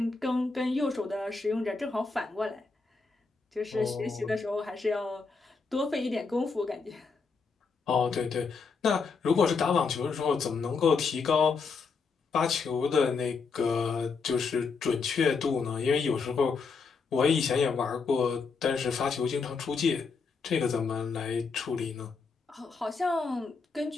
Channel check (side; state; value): right; quieter; 4.8 dB